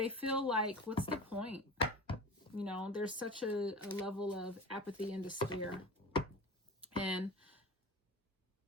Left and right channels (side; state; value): both; normal; correlation 0.34